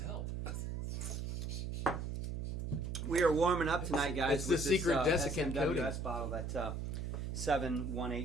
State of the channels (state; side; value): noise; right; hum, 3 dB below the sound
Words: help. We are warming up tonight, guys. It's the with secret this, desiccant SMWS coating. bottle, that